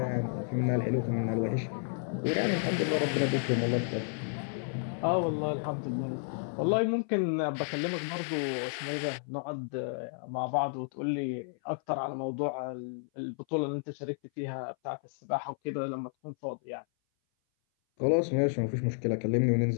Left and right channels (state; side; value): silent; right; 57 dB below the other